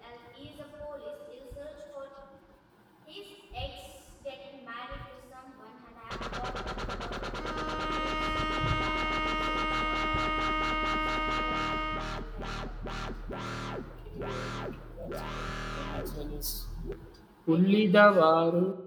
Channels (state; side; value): identical; both; correlation 1.00